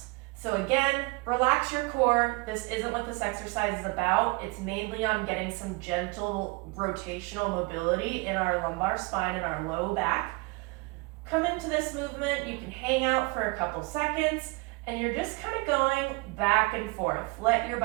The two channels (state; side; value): quieter; left; 26.4 dB